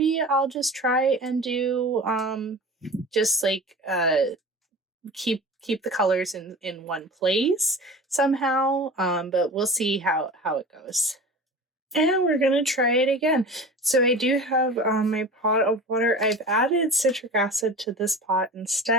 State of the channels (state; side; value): normal; both; correlation 0.35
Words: I'll just try and do just like keep the colors in one place somehow, but we'll see how it goes. And we're gonna try it again. So I do have my pot of water. I've added citric acid to this pot